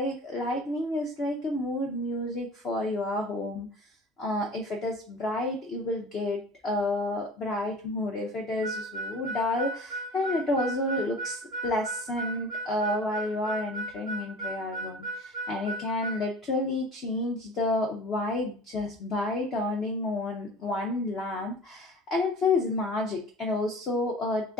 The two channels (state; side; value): normal; both; correlation 0.40